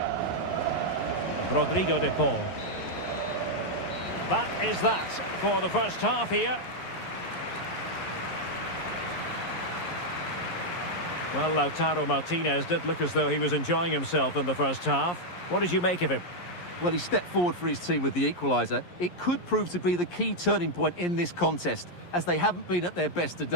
Rodrigo de Paul. That is that for the first half here. Well, Lautaro Martinez did look as though he was enjoying himself in the first half. What did you make of him? Well, he stepped forward for his team with the equaliser. It could prove to be the key turning point in this contest, as they haven't been at their best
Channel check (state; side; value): late; right; 11 ms